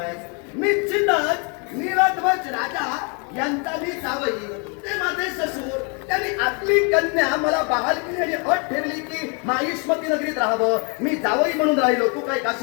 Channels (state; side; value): quieter; right; 35.0 dB